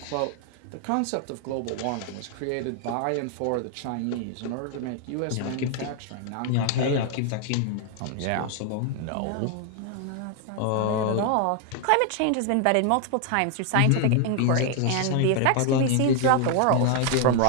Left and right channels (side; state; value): both; different; correlation 0.00